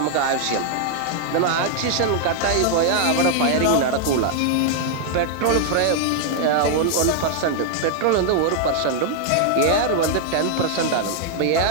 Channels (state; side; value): different; both; correlation 0.00